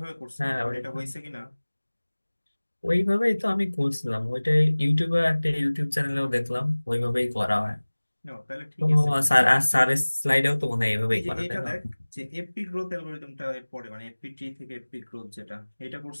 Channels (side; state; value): both; inverted; correlation -1.00